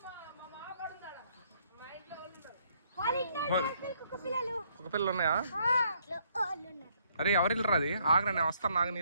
కుక్క పిల్లలు ఉన్నాయా? అరే ఎవరిల్లు రాది? ఆగరా నేను వస్తాను, నాకు నీ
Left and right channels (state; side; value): inverted; both; correlation -0.69